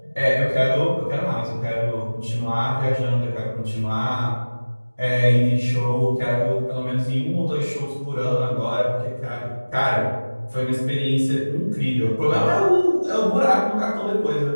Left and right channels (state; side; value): inverted; both; correlation -1.00